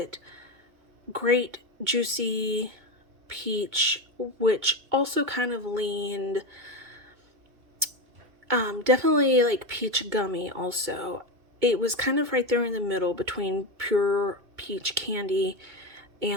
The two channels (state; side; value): late; left; 2.3 ms